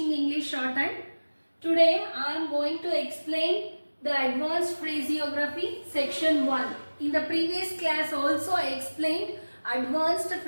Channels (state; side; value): inverted; both; correlation -1.00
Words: English Shorthand. Today I am going to explain the advanced phraseography section 1. In the previous class also I explained advanced